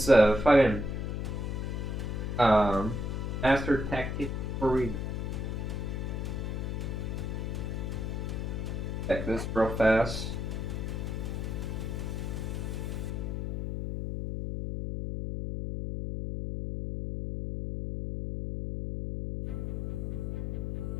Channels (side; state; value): left; noise; hum, 3 dB below the sound